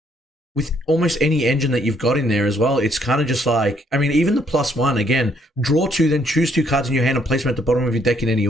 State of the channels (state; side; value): normal; both; correlation 0.69